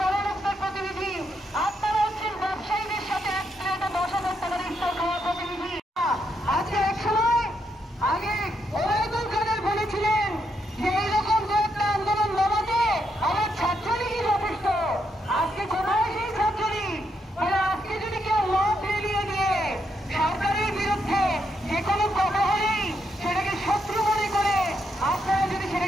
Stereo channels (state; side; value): normal; both; correlation 0.79